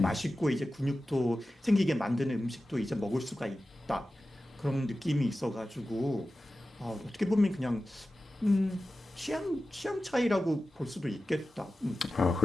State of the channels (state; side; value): normal; both; correlation 0.94